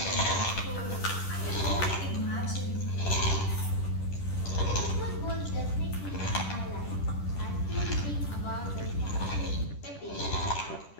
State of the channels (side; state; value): right; late; 10 ms